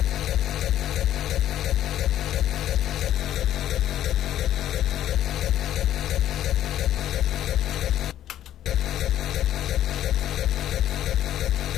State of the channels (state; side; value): quieter; right; 12.0 dB